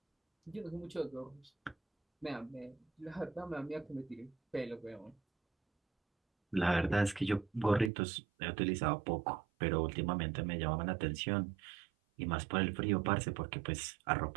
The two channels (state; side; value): drops out; left; at 7.9 s